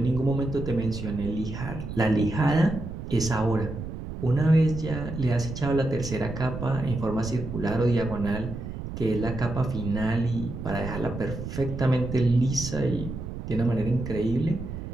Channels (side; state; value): right; noise; rumble, 8 dB below the sound